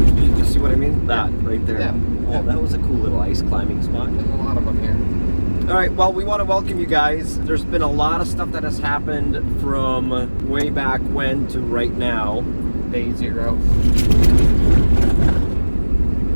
see what I mean? That right there. Yeah. Oh, that was a cool little ice climbing spot. There's a lot of them here. All right, well, we want to welcome you guys. There's been a lot of stuff that has happened from way back when to right now. Day 0.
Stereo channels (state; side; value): inverted; both; correlation -1.00